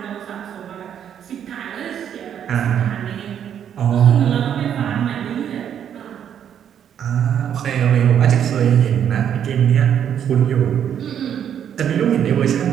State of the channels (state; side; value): quieter; left; 9.1 dB